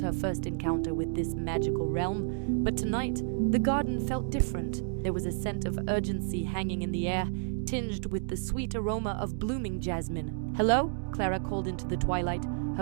first encounter with this magical realm. But tonight, the garden felt different. There was a scent of urgency hanging in the air, tinged with the sweet aroma of blooming jasmine. "Hello?" Clara called into the twilight,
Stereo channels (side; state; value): left; silent; digital silence